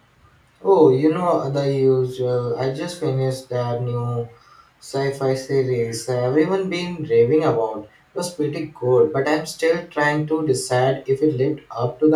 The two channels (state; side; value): identical; both; correlation 1.00